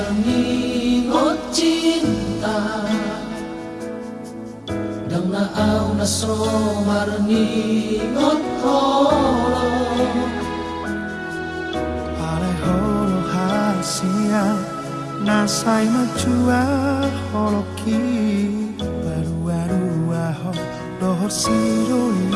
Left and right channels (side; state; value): both; identical; correlation 1.00